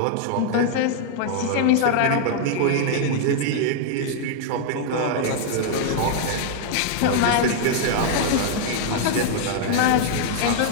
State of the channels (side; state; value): both; different; correlation -0.01